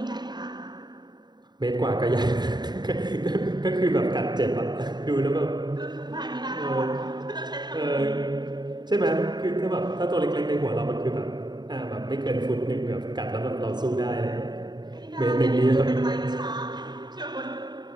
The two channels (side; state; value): left; late; 0.21 ms